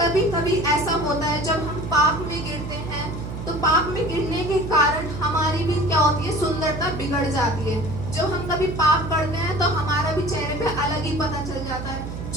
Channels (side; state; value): right; noise; hum, 8 dB below the sound